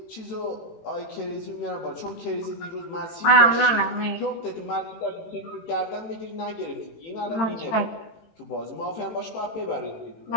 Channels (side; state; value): right; late; 18 ms